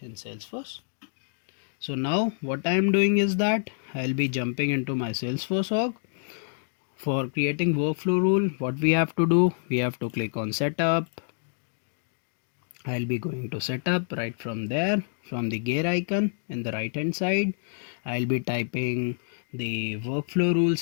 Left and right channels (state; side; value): silent; right; 60 dB below the other